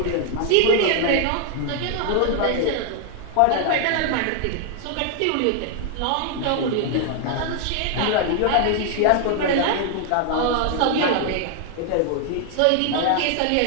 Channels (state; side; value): different; both; correlation 0.00